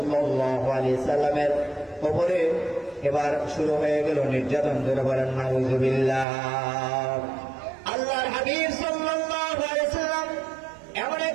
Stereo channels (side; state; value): left; drops out; at 6.2 s